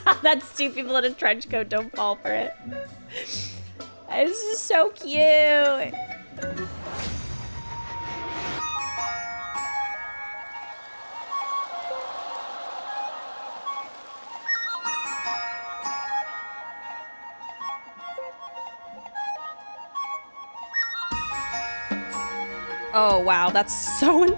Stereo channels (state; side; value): inverted; both; correlation -1.00